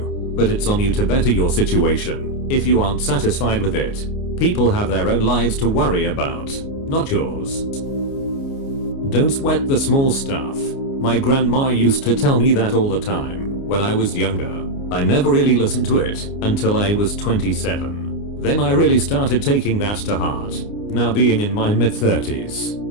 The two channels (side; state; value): right; late; 29 ms